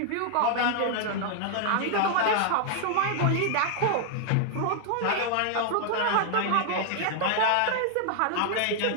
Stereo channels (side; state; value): both; different; correlation 0.00